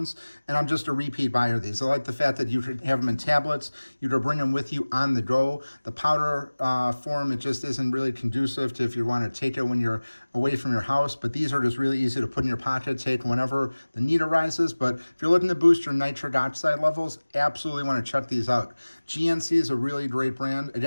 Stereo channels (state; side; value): inverted; both; correlation -1.00